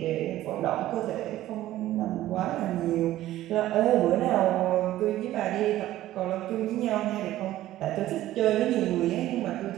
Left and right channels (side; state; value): left; quieter; 14.5 dB